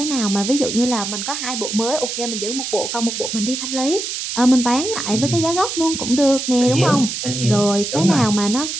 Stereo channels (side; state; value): right; noise; hiss, 4 dB below the sound